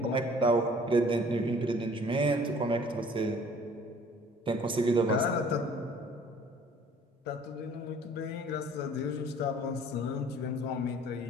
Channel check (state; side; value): normal; both; correlation 0.53